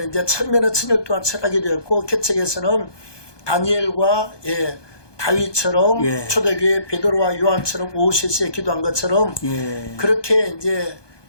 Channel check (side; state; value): right; late; 1.2 ms